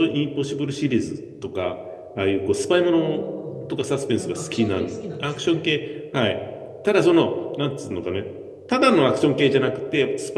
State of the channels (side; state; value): both; identical; correlation 1.00